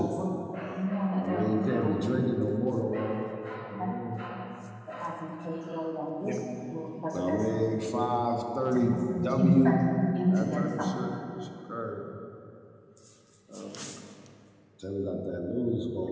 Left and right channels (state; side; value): identical; both; correlation 1.00